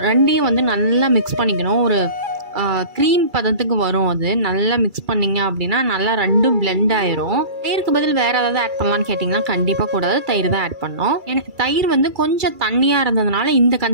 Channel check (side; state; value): left; late; 2.3 ms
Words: ரெண்டையும் நல்லா மிக்ஸ் பண்ணிக்கணும். ஒரு க்ரீம் பதத்துக்கு வரும். அது நல்லா மிக்ஸ் பண்ணிங்க அப்படின்னா நல்லா ரெண்டும் பிளெண்ட் ஆயிரும். தயிருக்கு பதில் வேறு ஏதாவது ஆட் பண்ணலான்னு கேட்டிங்கன்னா கண்டிப்பாக கூடாது, தயிர் தான் ஆட் பண்ணோம். எனக்கு தயிர் கொஞ்சம் தண்ணியாக இருந்ததுனால இந்த